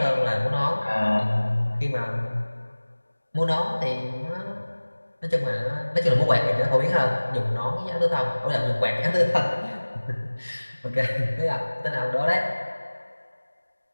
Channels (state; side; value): inverted; both; correlation -1.00